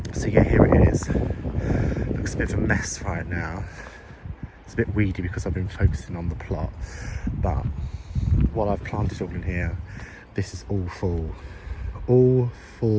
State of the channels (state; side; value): identical; both; correlation 1.00